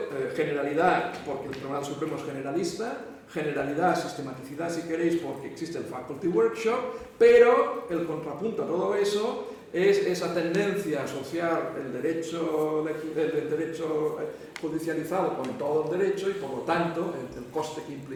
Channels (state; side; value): identical; both; correlation 1.00